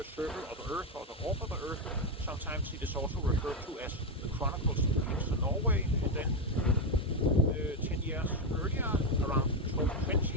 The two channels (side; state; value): both; normal; correlation 0.08